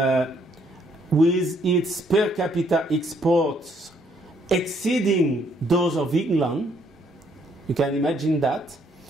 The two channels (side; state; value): both; normal; correlation 0.68